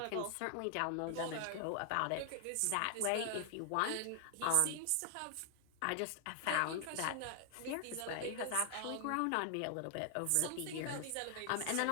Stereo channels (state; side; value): different; both; correlation 0.00